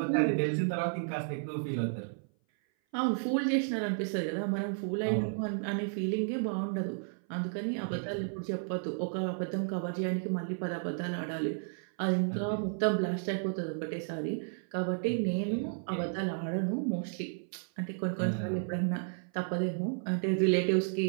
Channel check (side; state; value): left; silent; 56 dB below the other